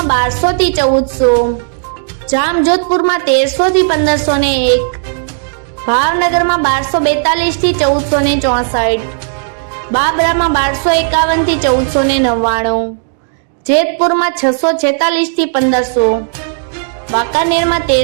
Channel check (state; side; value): silent; left; digital silence